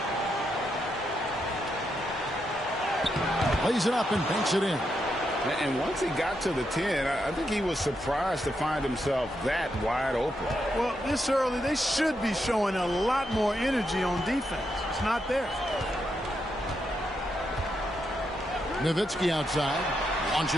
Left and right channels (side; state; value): both; normal; correlation 0.82